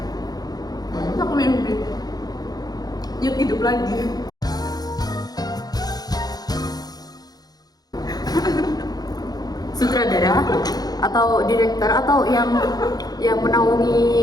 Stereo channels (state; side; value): late; right; 0.19 ms